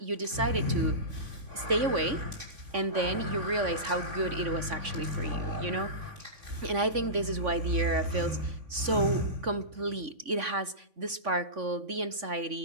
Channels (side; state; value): left; late; 3.5 ms